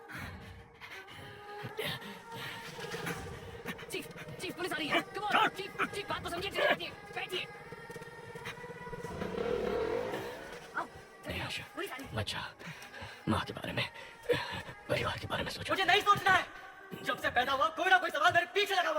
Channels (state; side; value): identical; both; correlation 1.00